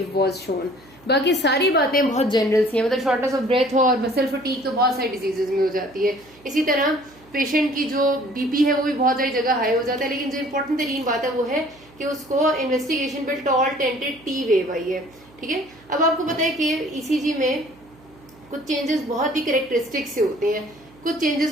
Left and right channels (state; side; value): noise; right; hum, 26 dB below the sound